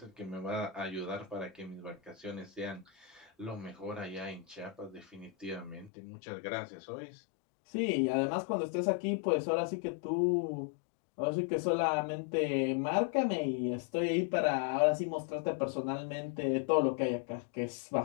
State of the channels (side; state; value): right; drops out; at 5.9 s